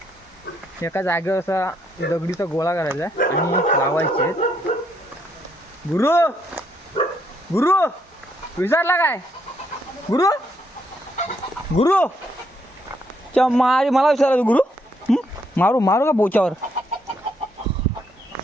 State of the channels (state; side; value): normal; both; correlation 0.73